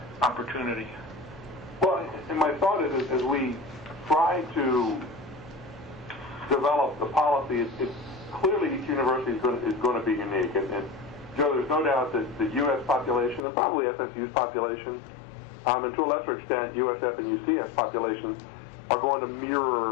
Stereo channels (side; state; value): right; drops out; at 13.4 s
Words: opportunity. Well, and my thought is, as we try to develop the policy, it's clearly each university is going to be unique. And Joe, there's no doubt that the U.S. population, and probably FSU's population, and to a lesser extent USF and UCF populations, are going to